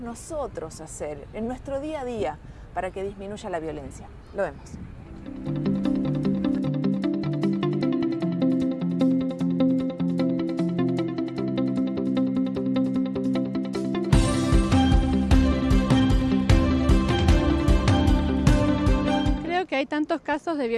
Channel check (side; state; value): both; identical; correlation 1.00